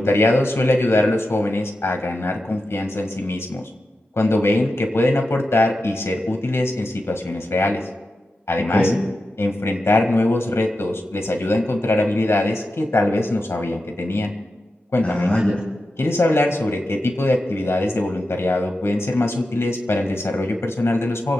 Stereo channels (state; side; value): normal; both; correlation 0.90